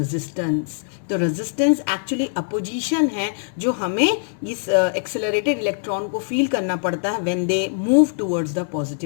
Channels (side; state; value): right; silent; 64 dB below the other